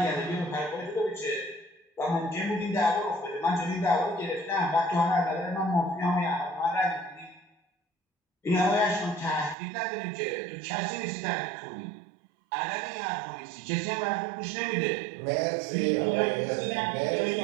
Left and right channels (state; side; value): drops out; left; at 9.6 s